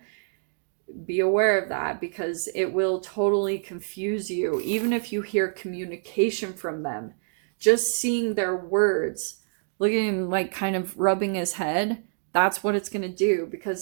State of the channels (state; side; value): silent; left; digital silence